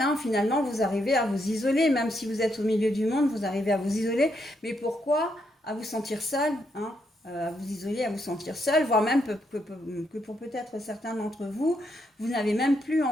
finalement vous arrivez à vous isoler, même si vous êtes au milieu du monde, vous arrivez à vous isoler, mais pourquoi à vous sentir seul, hein, à vous isoler, à vous sentir seul, voire même que pour peut-être certains d'entre vous, vous n'avez même plus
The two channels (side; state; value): both; normal; correlation 0.78